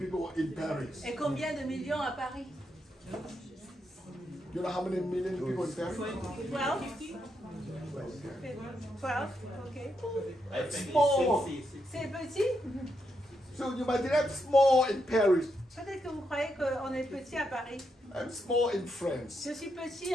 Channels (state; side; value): normal; both; correlation 0.81